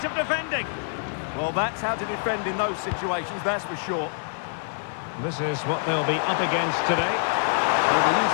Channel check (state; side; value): silent; right; digital silence